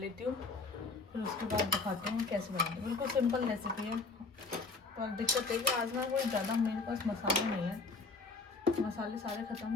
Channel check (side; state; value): right; quieter; 3.9 dB